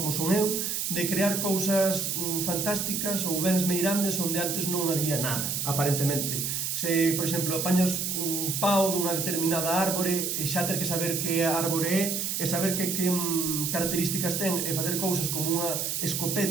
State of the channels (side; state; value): right; noise; hiss, 1 dB below the sound